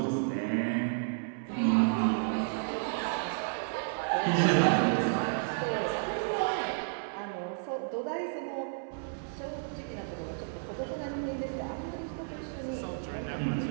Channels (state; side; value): silent; left; 56 dB below the other